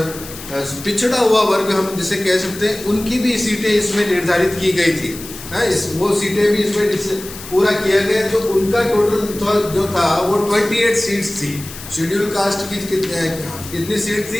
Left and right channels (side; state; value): left; noise; hiss, 13 dB below the sound